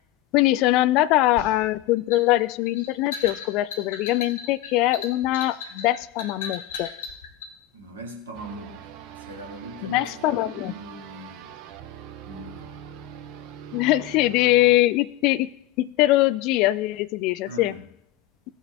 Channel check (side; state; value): right; quieter; 14.5 dB